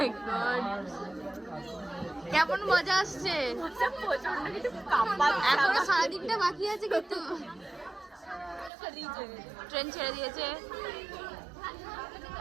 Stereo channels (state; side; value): drops out; left; at 8.7 s